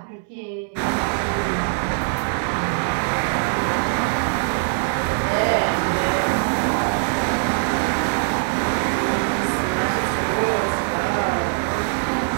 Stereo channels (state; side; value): silent; left; 64 dB below the other